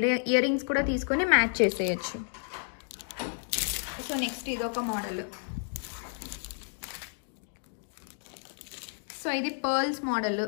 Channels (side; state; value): right; silent; digital silence